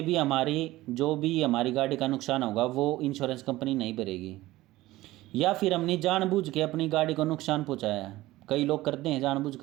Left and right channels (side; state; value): left; quieter; 17.4 dB